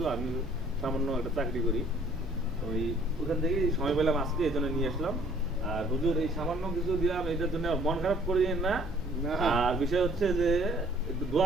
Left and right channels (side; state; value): both; normal; correlation 0.57